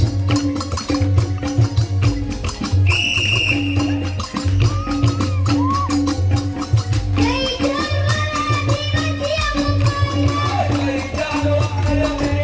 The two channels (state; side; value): identical; both; correlation 1.00